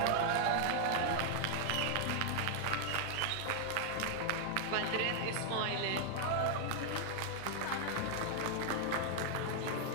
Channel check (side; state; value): both; different; correlation 0.00